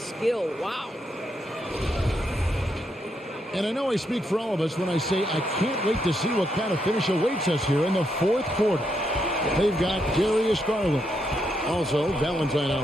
Wow. And I know I speak for all of us when I say I can't wait to see what kind of finish awaits us here in the fourth quarter. They've got Darius Garland. Also, Valentine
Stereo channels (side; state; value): both; normal; correlation 0.79